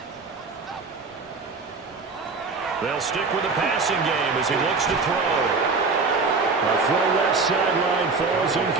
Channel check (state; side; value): quieter; left; 4.3 dB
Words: They'll stick with the passing game as he looks to throw. A throw left sideline falls